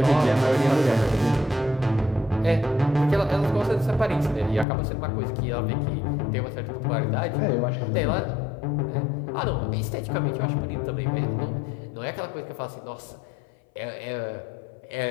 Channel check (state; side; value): drops out; right; at 4.7 s